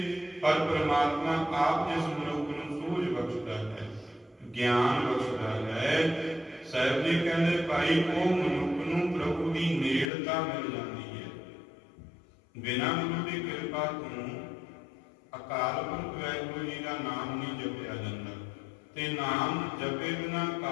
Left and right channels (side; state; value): right; drops out; at 10.1 s